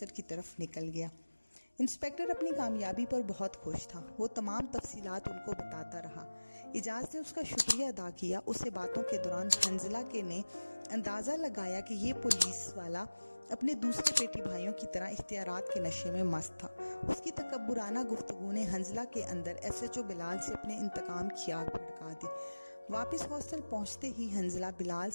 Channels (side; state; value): both; inverted; correlation -1.00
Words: کی طرف نکل گیا۔ انسپیکٹر اپنی کامیابی پر بہت خوش تھا۔ وہ تمام تفصیلات ان کو بتاتا رہا۔ اعجاز نے اس کا شکریہ ادا کیا۔ اس سے باتوں کے دوران حنزلہ نے اندازہ لگایا کہ یہ پولیس والا اپنے دوسرے بیٹی بھائیوں کی طرح اختیارات کے نشے میں مست تھا۔ اس کی تکبرانہ گفتگو نے حنزلہ کے اندر SHO بلال سے اپنے انتقام کی آگ بھڑکا دی۔ واپس ہاسٹل پہنچتے ہی حنزلہ بلال